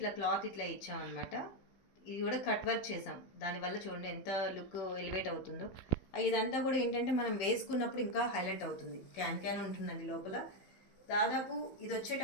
క్లాత్ ఇట్లా ఇచ్చామన్నమాట. ఇది కూడా కట్ వర్క్ చేసాం. దానివల్ల చూడండి ఎంత లుక్ ఎలివేట్ అవుతుందో. ఇదంతా కూడా ఏంటంటే మనం వేసుకున్నప్పుడు ఇంకా హైలైట్ అవుతుంది. క్యాన్ ఉంటుందండి లోపల. దాదాపు ఇది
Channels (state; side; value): late; right; 15 ms